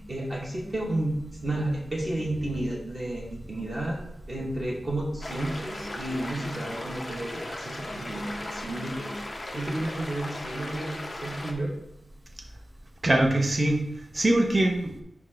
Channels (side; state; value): both; normal; correlation 0.94